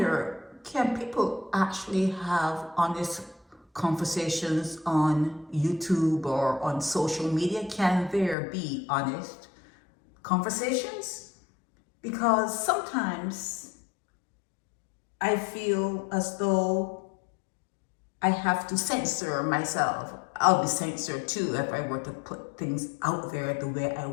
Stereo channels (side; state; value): right; drops out; at 8.3 s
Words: can people actually have honest conversations on YouTube or on social media? Can there be honest conversations? Because sometimes I feel as though I have to censor myself. I'll be censored too if I were to put things out there the way I